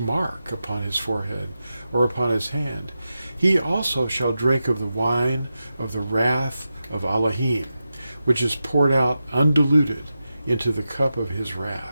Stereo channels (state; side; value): inverted; both; correlation -0.91